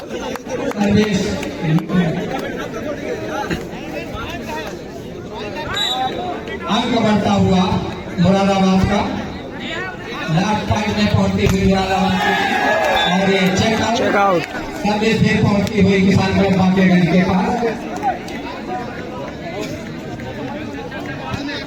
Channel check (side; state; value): both; identical; correlation 1.00